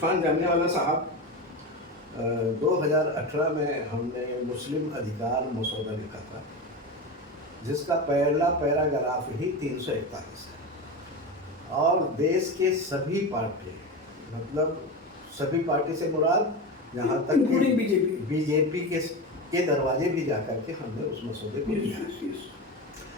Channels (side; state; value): both; normal; correlation 0.22